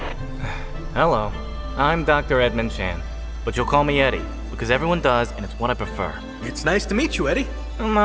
Hello, I'm Dr. Edmund Chan, but you'll call me Eddie, because everyone does, and it's what I prefer. It's nice to meet you, Eddie.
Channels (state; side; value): identical; both; correlation 1.00